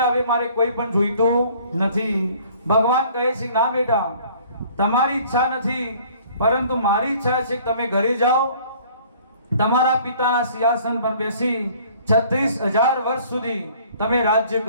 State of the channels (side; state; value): both; inverted; correlation -0.54